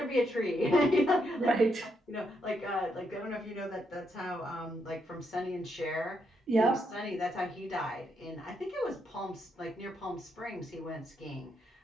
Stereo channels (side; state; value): both; normal; correlation 0.78